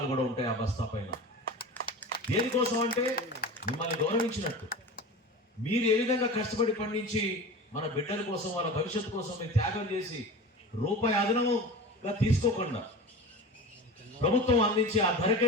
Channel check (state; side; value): normal; both; correlation 0.32